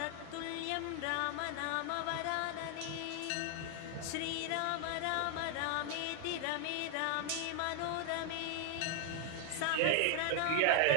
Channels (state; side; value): different; both; correlation 0.00